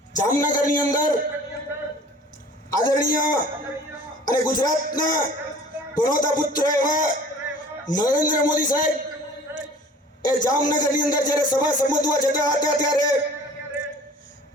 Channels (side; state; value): both; normal; correlation 0.48